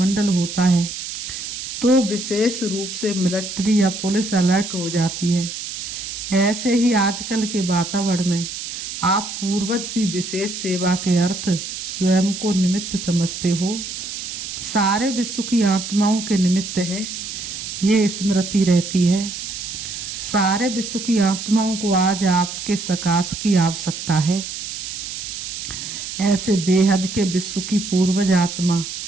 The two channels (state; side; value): noise; right; hiss, 7 dB below the sound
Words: होता है तो विशेष रूप से मिलिट्री या पुलिस अलर्ट हो जाती है, ऐसे ही आजकल के वातावरण में आप पूर्वज भी विशेष सेवा के अर्थ स्वयं को निमित्त समझते हो। सारे विश्व की आत्माओं के निमित्त है, ये स्मृति रहती है। सारे विश्व की आत्माओं को आज आपके सकाश की आवश्यकता है। ऐसे बेहद के विश्व की पूर्वज आत्मा